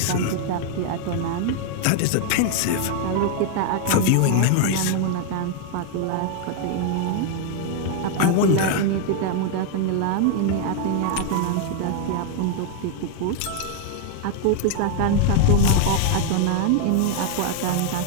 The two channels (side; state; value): both; different; correlation 0.00